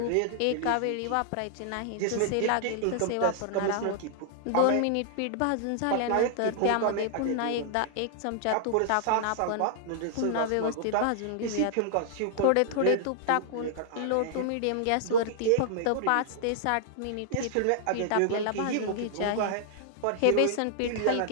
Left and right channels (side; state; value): both; different; correlation 0.00